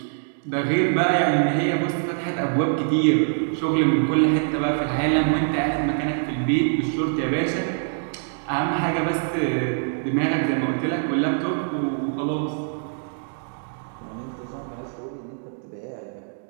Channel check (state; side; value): silent; left; digital silence